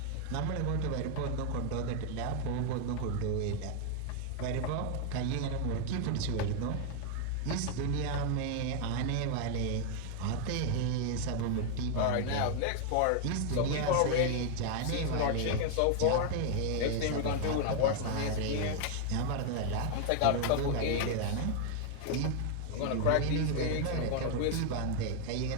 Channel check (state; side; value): different; both; correlation 0.00